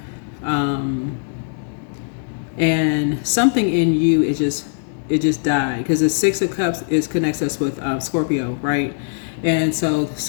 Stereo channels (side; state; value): right; silent; digital silence